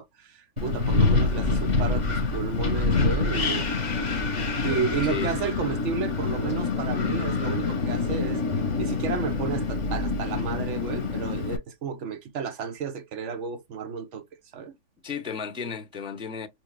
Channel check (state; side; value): late; left; 3.5 ms